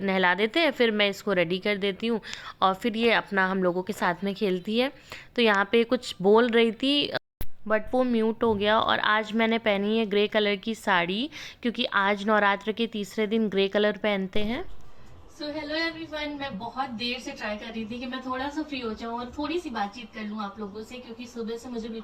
देते हैं, फिर मैं इसको रेडी कर देती हूँ और फिर ये अपना हम लोगों के साथ में खेलती है। तो यहाँ पे कुछ बोल रही थी बट वो म्यूट हो गया। और आज मैंने पहनी है ग्रे कलर की साड़ी, क्योंकि आज नवरात्र के तीसरे दिन ग्रे कलर पहनते हैं। सो हेलो एवरीवन, मैं बहुत देर से ट्राई कर रही थी कि मैं थोड़ा सा फ्री हो जाऊं और थोड़ी सी बातचीत कर लूं आप लोगों से, क्योंकि सुबह से मुझे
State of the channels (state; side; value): identical; both; correlation 1.00